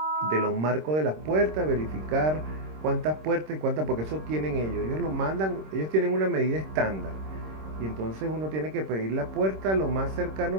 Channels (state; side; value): late; left; 26 ms